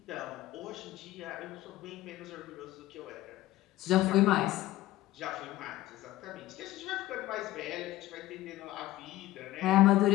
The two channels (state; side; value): quieter; right; 16.0 dB